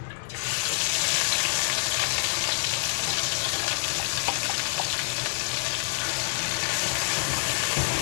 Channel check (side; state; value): right; silent; 60 dB below the other